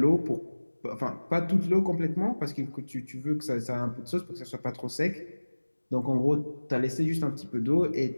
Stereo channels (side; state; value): both; inverted; correlation -1.00